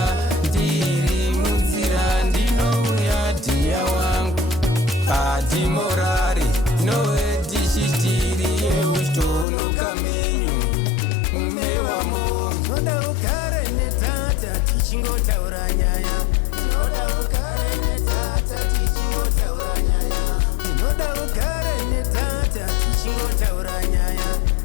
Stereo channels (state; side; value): drops out; right; at 9.5 s